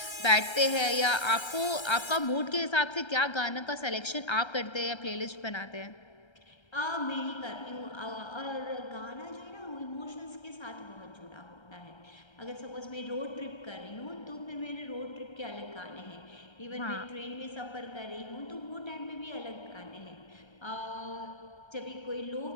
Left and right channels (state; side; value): late; right; 1.3 ms